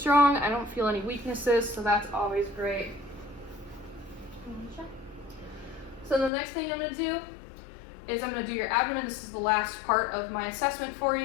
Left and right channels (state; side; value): drops out; right; at 6.3 s